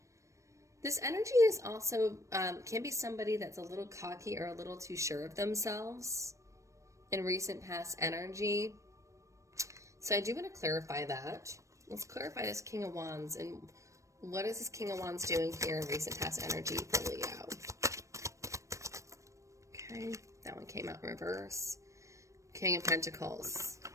This energy is also, can be somebody that's a little cocky or a little too sure of themselves in recent past energy. So I do want to clarify that. Let's clarify this King of Wands and what is this King of Wands doing here in recent past energy for Leo. Okay, that one came out in reverse. King of Pentacles.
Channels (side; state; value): left; late; 0.15 ms